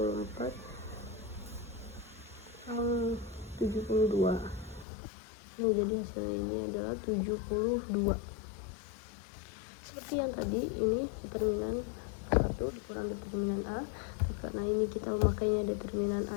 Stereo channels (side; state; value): right; drops out; at 4.9 s